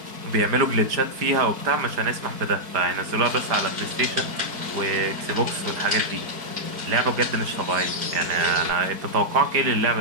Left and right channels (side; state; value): left; late; 4.6 ms